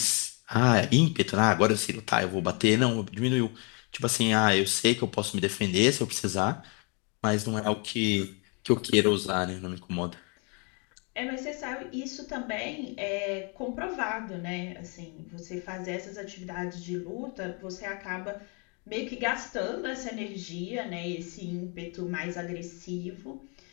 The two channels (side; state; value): right; quieter; 34.5 dB